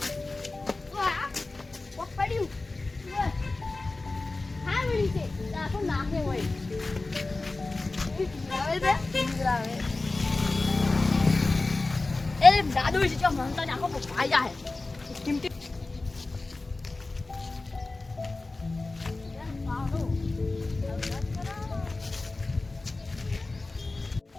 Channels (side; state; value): right; quieter; 3.3 dB